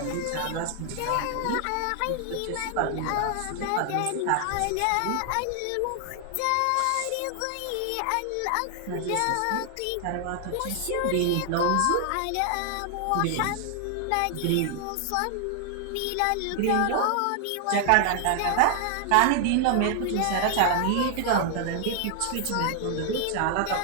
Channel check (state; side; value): different; both; correlation 0.00